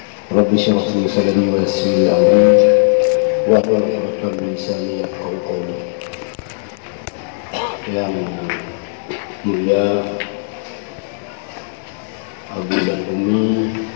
Rabbi syrah li sadri wa yassir li amri wahlul 'uqdatam min lisani yafqahu qawli. Yang mulia Abu dan Umi,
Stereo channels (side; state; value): right; silent; 56 dB below the other